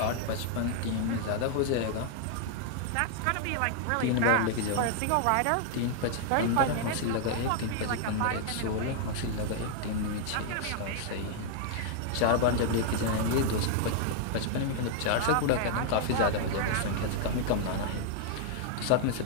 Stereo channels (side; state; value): both; different; correlation 0.00